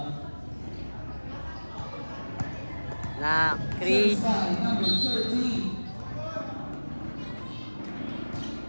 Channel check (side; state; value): both; inverted; correlation -1.00